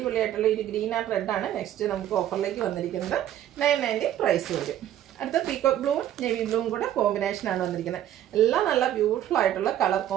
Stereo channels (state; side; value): quieter; left; 11.7 dB